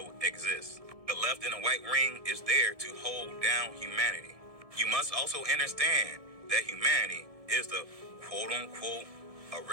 exists. The left and the white ring is there to hold down humanity. You must also understand that humanity is the quote-unquote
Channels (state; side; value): late; left; 1.7 ms